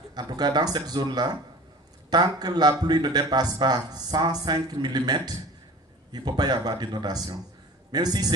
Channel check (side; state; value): both; normal; correlation 0.41